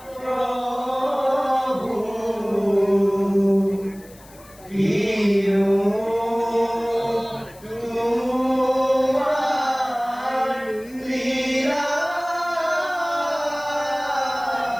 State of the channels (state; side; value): noise; left; hiss, 24 dB below the sound